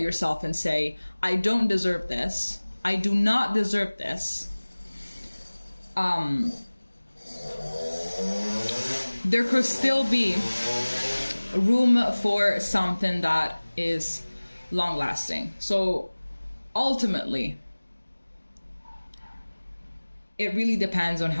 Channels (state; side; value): inverted; both; correlation -1.00